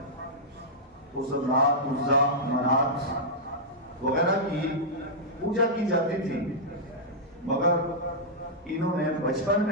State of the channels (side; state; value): both; normal; correlation -0.10